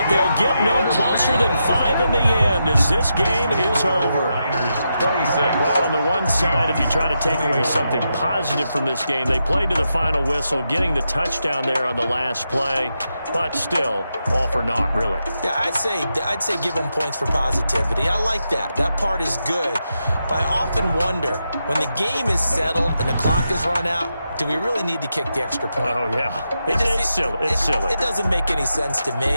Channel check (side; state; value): both; inverted; correlation -0.86